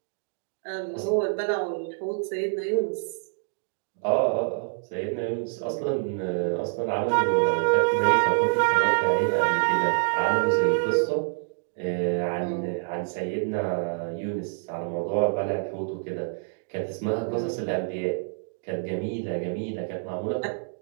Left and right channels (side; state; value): left; silent; digital silence